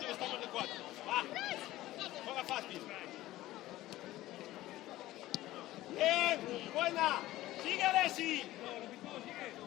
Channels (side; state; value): right; quieter; 16.1 dB